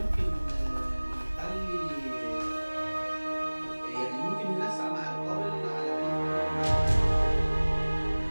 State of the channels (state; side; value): inverted; both; correlation -1.00